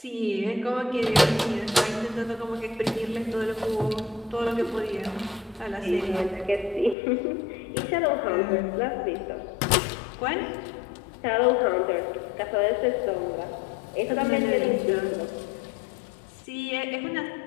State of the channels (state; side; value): drops out; right; at 7.0 s